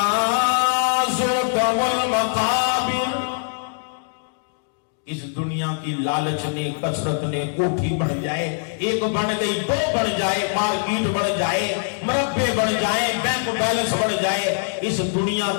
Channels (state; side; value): silent; right; digital silence